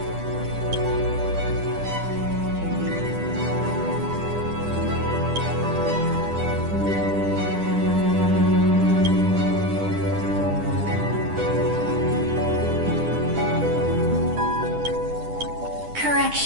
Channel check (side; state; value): left; late; 10 ms